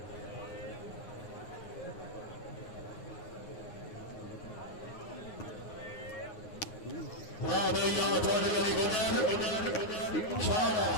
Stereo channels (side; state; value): right; late; 9.6 ms